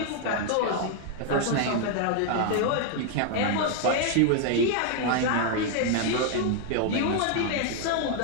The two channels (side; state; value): both; different; correlation 0.00